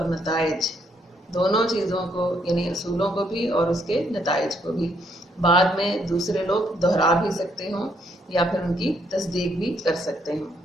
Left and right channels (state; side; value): normal; both; correlation 0.72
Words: نتائج, دونوں چیزوں کو یعنی اصولوں کو بھی اور اس کے نتائج کو بھی, بعد میں دوسرے لوگ دہرا بھی سکتے ہوں یا پھر ان کی تصدیق بھی کر سکتے ہوں.